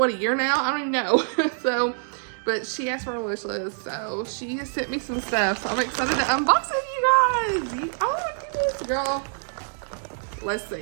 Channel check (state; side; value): silent; left; digital silence